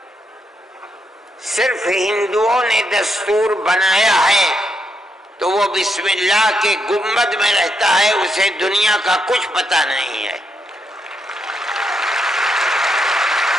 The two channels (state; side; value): normal; both; correlation 0.79